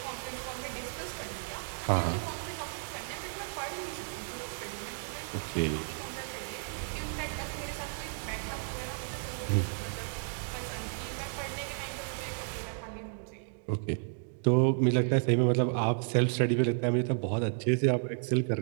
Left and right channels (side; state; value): left; silent; digital silence